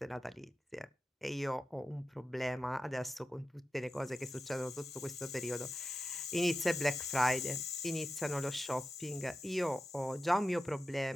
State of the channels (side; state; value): both; normal; correlation 0.92